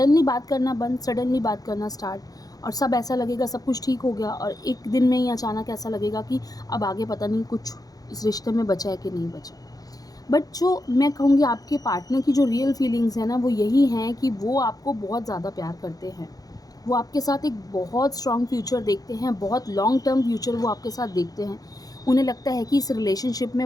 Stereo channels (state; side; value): late; right; 0.18 ms